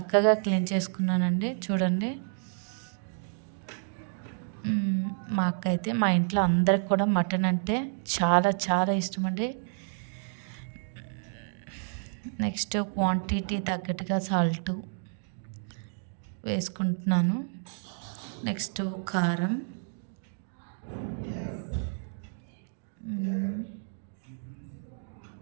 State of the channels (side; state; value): left; silent; digital silence